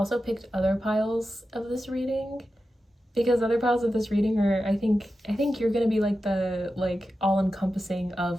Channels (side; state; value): both; normal; correlation 0.91